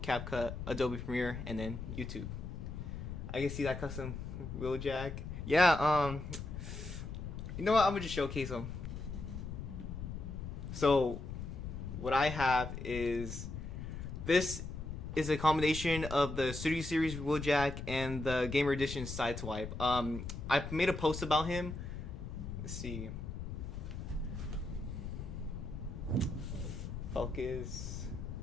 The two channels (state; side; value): noise; left; rumble, 7 dB below the sound